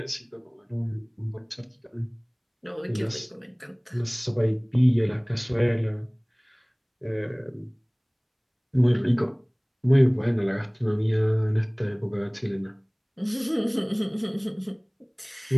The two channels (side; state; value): both; identical; correlation 1.00